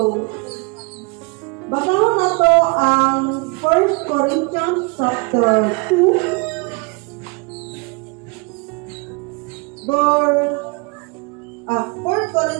basahon na to ang 1 Corinthians chapter 2, verse 1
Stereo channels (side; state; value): left; quieter; 30.6 dB